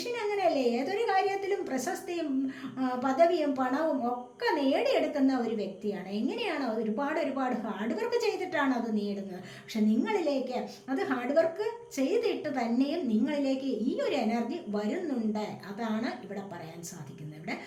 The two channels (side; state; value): both; identical; correlation 1.00